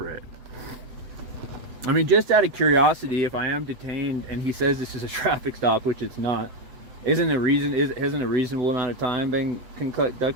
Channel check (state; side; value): late; left; 8.0 ms